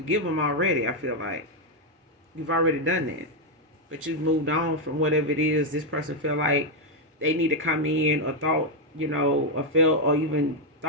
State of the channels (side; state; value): both; normal; correlation 0.02